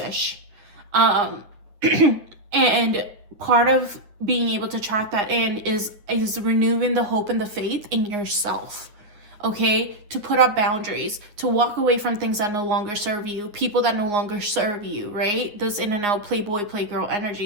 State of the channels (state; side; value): late; left; 9.5 ms